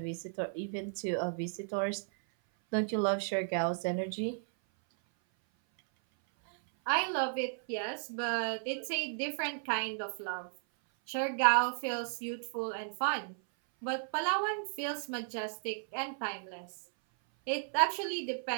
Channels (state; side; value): silent; left; 55 dB below the other